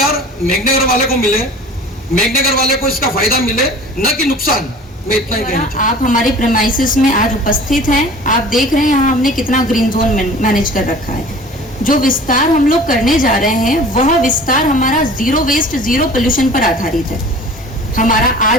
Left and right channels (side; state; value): both; normal; correlation 0.43